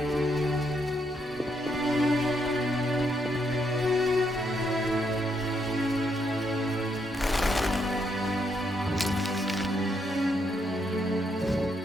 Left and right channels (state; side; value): normal; both; correlation 0.76